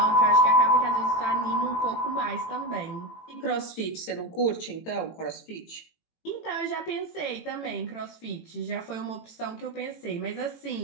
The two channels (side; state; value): right; late; 18 ms